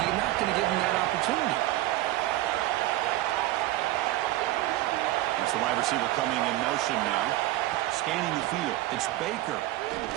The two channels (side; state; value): left; quieter; 16.4 dB